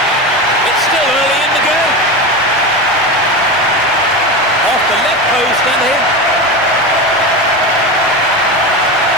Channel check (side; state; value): both; normal; correlation 0.22